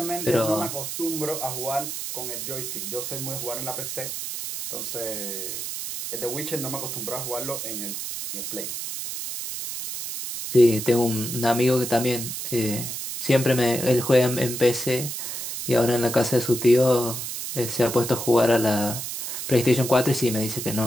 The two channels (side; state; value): right; noise; hiss, 5 dB below the sound